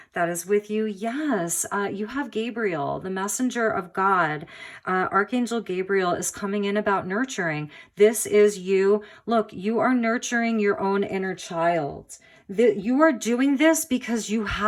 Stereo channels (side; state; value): both; identical; correlation 1.00